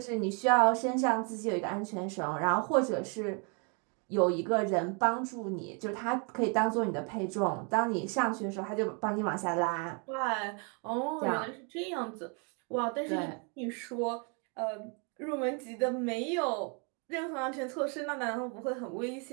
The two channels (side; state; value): left; quieter; 36.2 dB